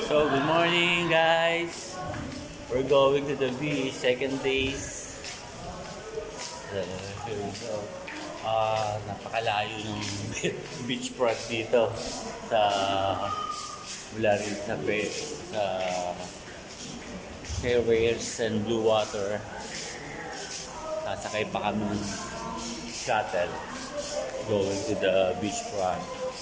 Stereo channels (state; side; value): identical; both; correlation 1.00